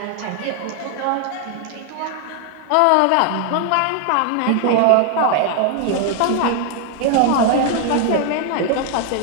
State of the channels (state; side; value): different; both; correlation 0.00